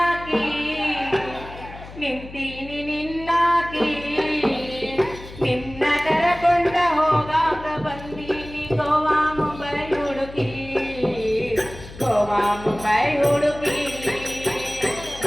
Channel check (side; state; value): left; noise; hum, 15 dB below the sound